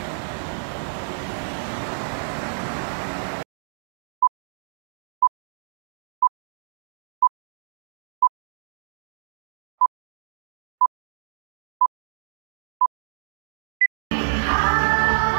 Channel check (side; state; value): left; silent; digital silence